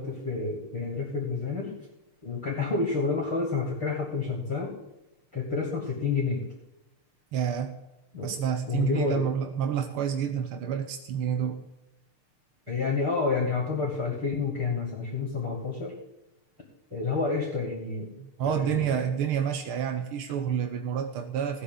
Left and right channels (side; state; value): left; late; 6.6 ms